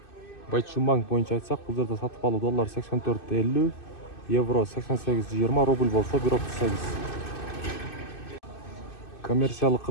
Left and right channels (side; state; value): right; late; 2.6 ms